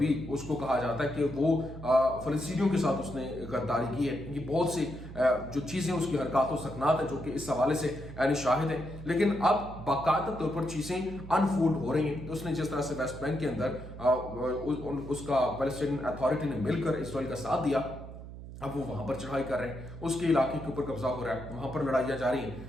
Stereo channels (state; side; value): noise; right; hum, 12 dB below the sound